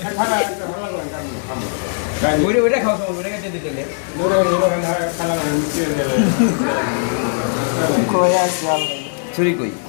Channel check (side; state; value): right; silent; digital silence